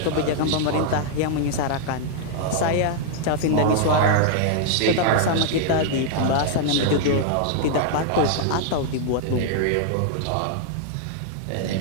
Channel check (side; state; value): both; different; correlation -0.01